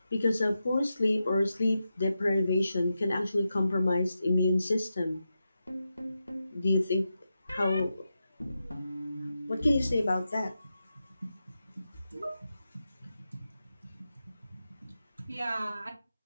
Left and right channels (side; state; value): both; inverted; correlation -0.89